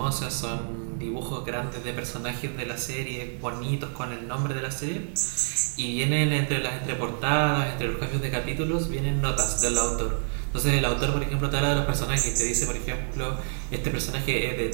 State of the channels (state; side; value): silent; left; digital silence